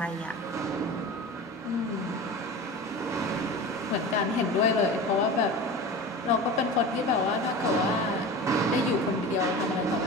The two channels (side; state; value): both; normal; correlation 0.32